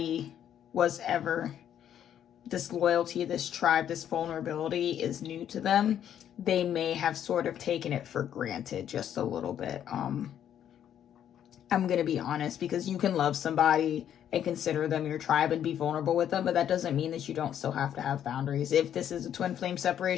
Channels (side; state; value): right; quieter; 10.0 dB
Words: was ever, this loyalty, this tribe, this vulnerability is new to them, they may have sort of taken it for granted just a little bit. I'm gonna be honest, because you can love somebody and consider them your tribe and be vulnerable with them, but that doesn't mean that you don't still have to have boundaries. If this is a twin flame